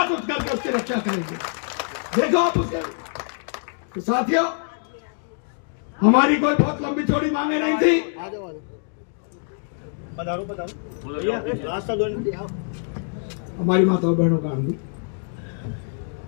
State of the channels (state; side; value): silent; right; digital silence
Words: उठ करके उसकी रक्षा करेंगे। देखो आप उसके। तो साथियों, हमारी कोई बहुत लंबी चौड़ी मांगे नहीं थी। हमारी माताओं बहनों का